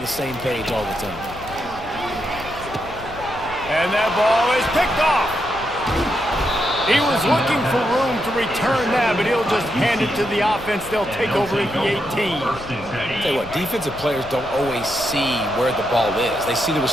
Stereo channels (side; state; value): left; noise; rumble, 16 dB below the sound